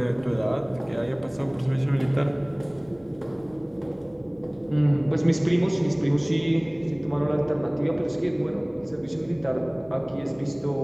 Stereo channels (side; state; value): right; noise; hum, 28 dB below the sound